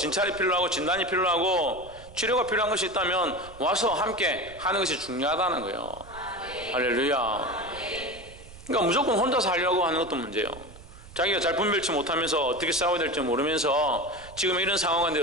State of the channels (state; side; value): noise; right; rumble, 18 dB below the sound